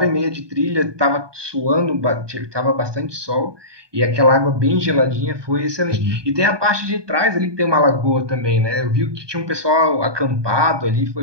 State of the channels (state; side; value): late; left; 1.2 ms